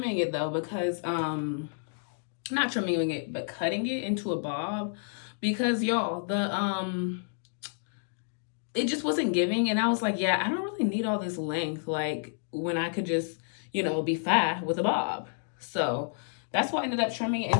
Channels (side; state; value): right; silent; digital silence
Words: it though because not trimming it, but cutting it into a bob because y'all, it just wasn't giving. And I was like, yeah, I don't really need all this length. Like when I could just, be fat with a bob. So that's why I ended up trimming it